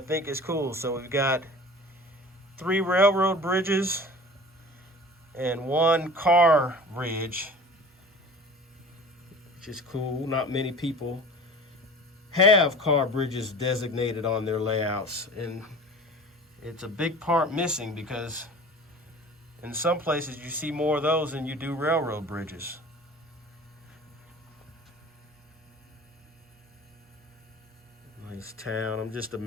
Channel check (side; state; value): both; normal; correlation 0.41